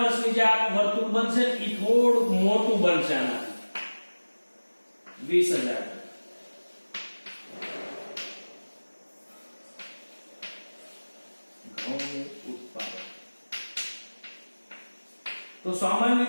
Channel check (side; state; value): both; inverted; correlation -1.00